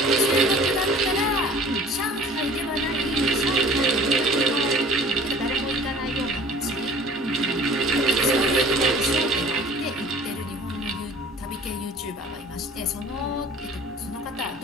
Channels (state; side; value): normal; both; correlation 0.47